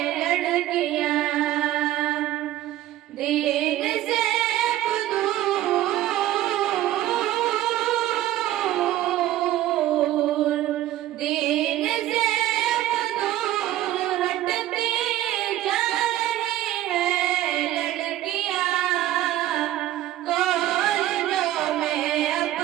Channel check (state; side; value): quieter; left; 14.0 dB